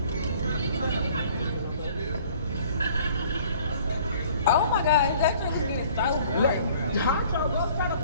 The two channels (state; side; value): inverted; both; correlation -0.54